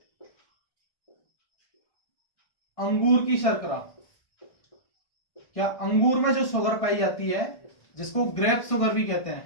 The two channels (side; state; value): right; late; 1.6 ms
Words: अंगूर की शर्करा, क्या अंगूर में जो शुगर पाई जाती है, जिसको ग्रेप शुगर भी कहते